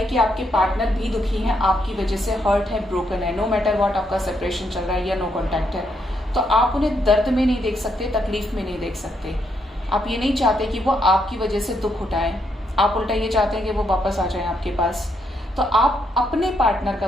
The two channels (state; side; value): normal; both; correlation 0.77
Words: कि आपके पार्टनर भी दुखी हैं, आपकी वजह से हर्ट है, ब्रोकन है, नो मैटर व्हाट आपका सेपरेशन चल रहा है या नो कॉन्टैक्ट है, तो आप उन्हें दर्द में नहीं देख सकते, तकलीफ में नहीं देख सकते। आप ये नहीं चाहते कि वो आपकी वजह से दुख उठाएं, आप उल्टा ये चाहते हैं कि वो वापस आ जाए आपके पास। तो आप अपने पार्टनर का